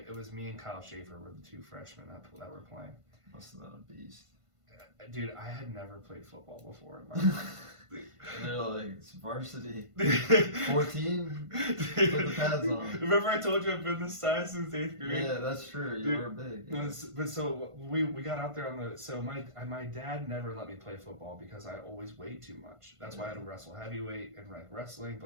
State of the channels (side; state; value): left; late; 1.5 ms